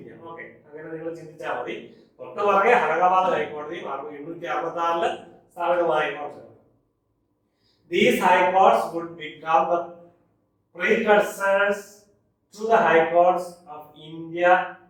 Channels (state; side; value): identical; both; correlation 1.00